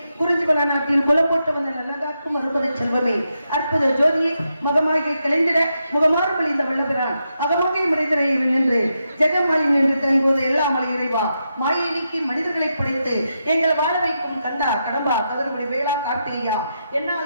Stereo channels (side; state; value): both; inverted; correlation -0.85